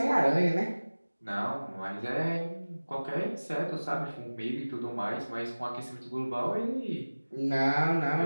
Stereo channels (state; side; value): inverted; both; correlation -1.00